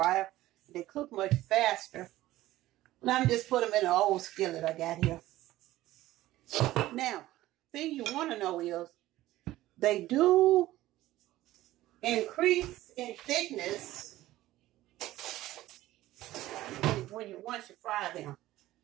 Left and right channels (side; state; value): left; quieter; 15.8 dB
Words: they cook much faster. And I'm just put them in an old skillet I got here. Now, thing you want to know is they do increase in thickness once you fry them.